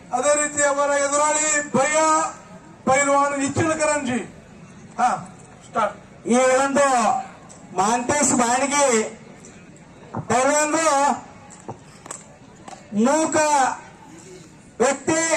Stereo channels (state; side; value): identical; both; correlation 1.00